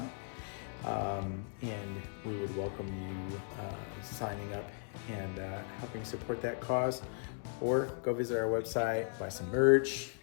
and we would welcome you signing up and helping support that cause. Or go visit our website, buy some merch,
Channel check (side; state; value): right; silent; digital silence